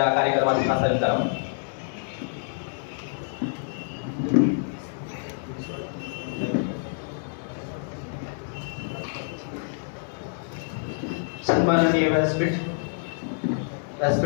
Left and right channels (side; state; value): right; silent; digital silence